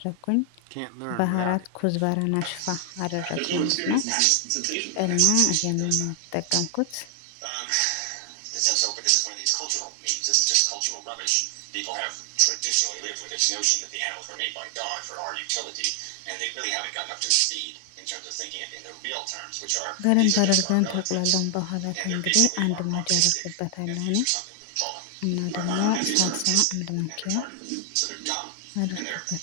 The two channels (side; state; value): both; different; correlation 0.00